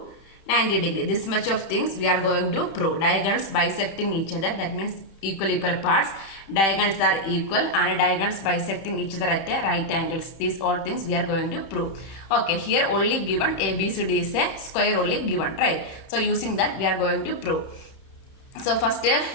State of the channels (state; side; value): late; right; 31 ms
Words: 90 degree. This much of things we are going to prove. Diagonals bisecting each other, that means equal parts. Diagonals are equal and diagonals bisecting each other at a right angles. These all things we are going to prove. Okay, here only given ABCD is a square only given, right? So using that we are going to prove. So first